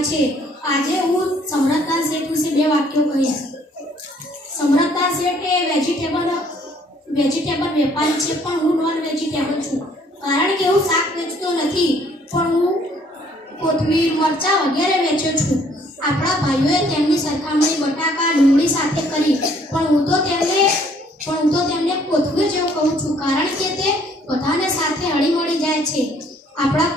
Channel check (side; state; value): both; normal; correlation 0.62